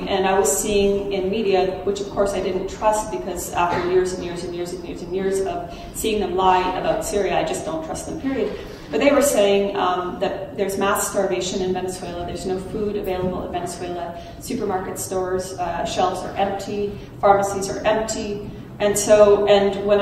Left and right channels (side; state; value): both; identical; correlation 1.00